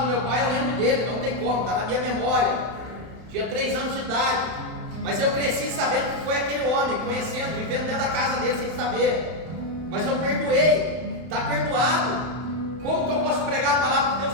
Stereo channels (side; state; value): left; late; 31 ms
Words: meu pai, eu lembro dele, não tem como, está na minha memória. Tinha 3 anos de idade, Mas eu cresci sabendo que foi aquele homem, conhecendo, vivendo dentro da casa dele sem saber. Mas eu perdoei, está perdoado. Como que eu posso pregar a palavra de Deus